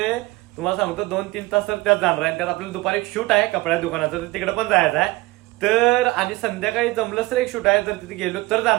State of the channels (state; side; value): quieter; left; 21.0 dB